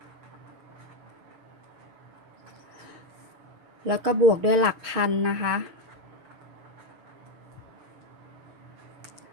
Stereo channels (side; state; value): left; late; 6.8 ms